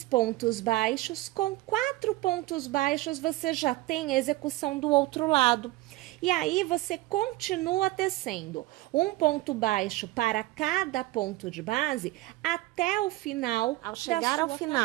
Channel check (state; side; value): quieter; left; 18.3 dB